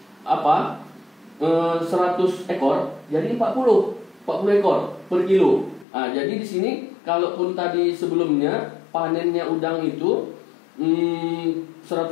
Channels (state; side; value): drops out; right; at 5.9 s